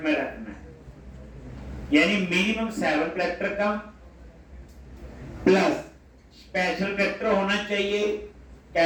में रखना है, यानी मिनिमम 7 कैरेक्टर का प्लस स्पेशल कैरेक्टर होना चाहिए,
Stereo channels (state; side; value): identical; both; correlation 1.00